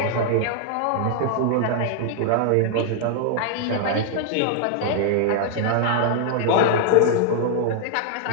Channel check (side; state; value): both; different; correlation 0.00